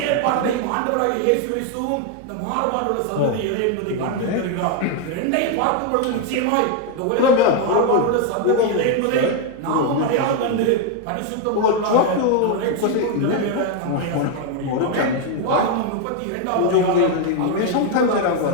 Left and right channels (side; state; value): both; different; correlation 0.01